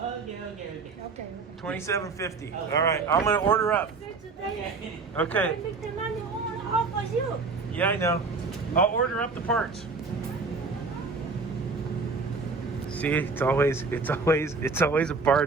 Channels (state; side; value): quieter; left; 4.2 dB